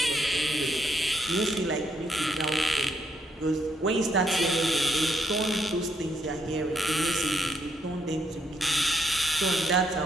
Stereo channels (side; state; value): both; normal; correlation 0.75